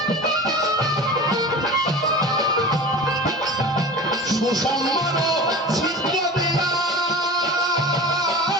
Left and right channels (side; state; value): both; normal; correlation 0.34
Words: সুসম্মান ছিদ্র দিয়া